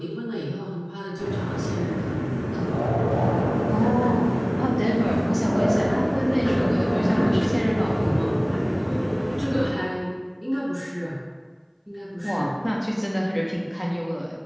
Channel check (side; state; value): both; identical; correlation 1.00